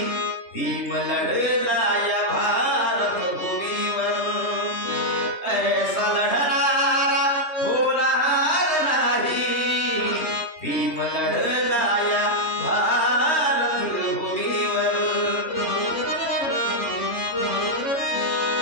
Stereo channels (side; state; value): right; late; 3.2 ms